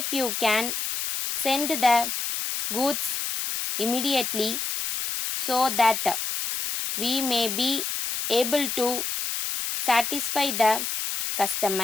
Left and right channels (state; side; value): noise; left; hiss, 3 dB below the sound